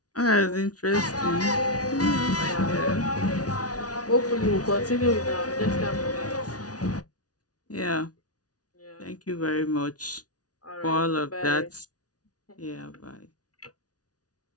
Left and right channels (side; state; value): right; late; 0.68 ms